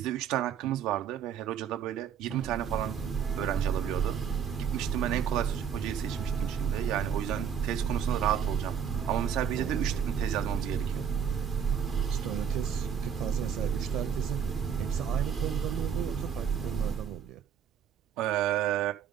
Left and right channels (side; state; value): left; quieter; 7.9 dB